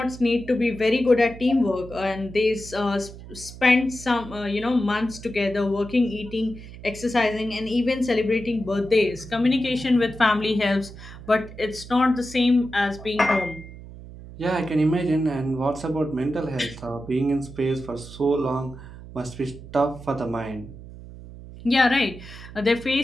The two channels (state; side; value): noise; right; hum, 15 dB below the sound